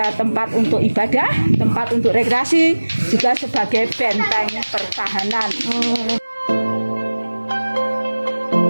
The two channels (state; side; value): inverted; both; correlation -1.00